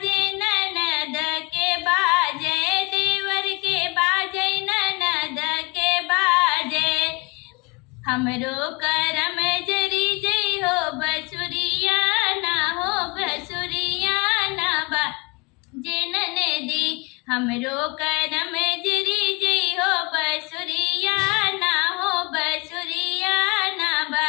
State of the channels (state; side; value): quieter; right; 28.0 dB